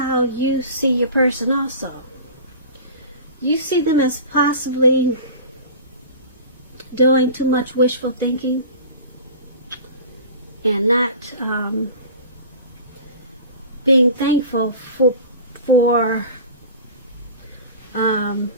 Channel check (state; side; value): inverted; both; correlation -0.37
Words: you see your person also. You see them as possibly doing too much wishful thinking and not being thankful for